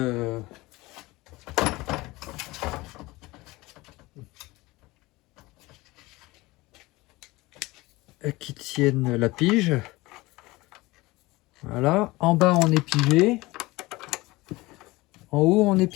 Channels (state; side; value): quieter; right; 21.0 dB